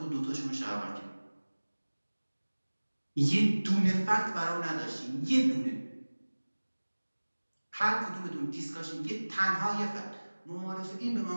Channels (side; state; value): both; inverted; correlation -1.00